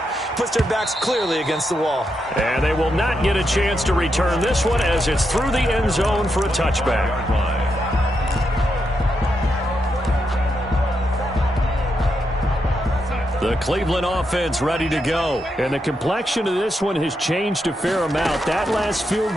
puts their backs clearly against the wall. And they will not get a chance to return this one as it's through the end zone for a touchback. The Cleveland offense ready to go. And the complexion of this one has changed a fair amount. That last field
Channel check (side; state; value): both; normal; correlation 0.83